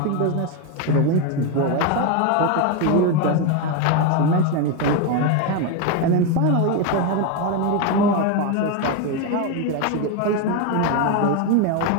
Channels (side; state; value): both; different; correlation 0.02